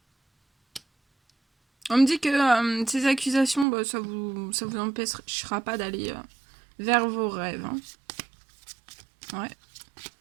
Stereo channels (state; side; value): drops out; left; at 3.7 s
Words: On me dit que ces accusations, bah, ça vous empêchera pas d'aller vers vos rêves. Hein. Ouais.